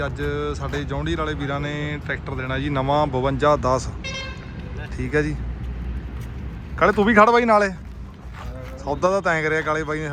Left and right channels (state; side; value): identical; both; correlation 1.00